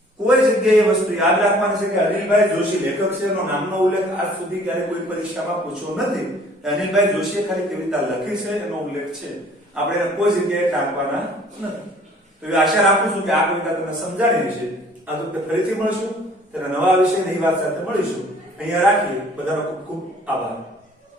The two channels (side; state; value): both; normal; correlation 0.54